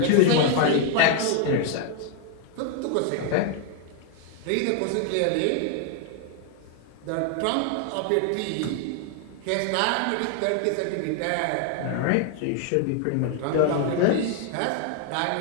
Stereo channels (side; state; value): both; different; correlation 0.00